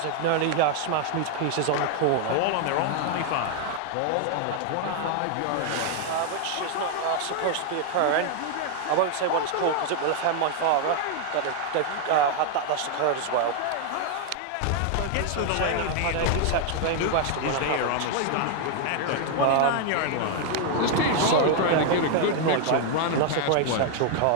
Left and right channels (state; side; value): different; both; correlation 0.00